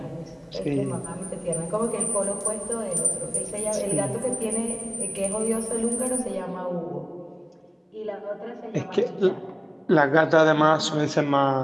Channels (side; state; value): both; identical; correlation 1.00